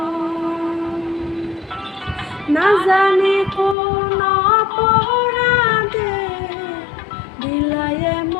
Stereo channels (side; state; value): right; drops out; at 3.8 s